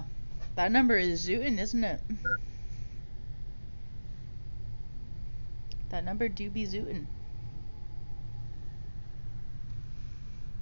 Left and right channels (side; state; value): both; inverted; correlation -1.00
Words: That number is zootin', isn't it? That number do be zootin'.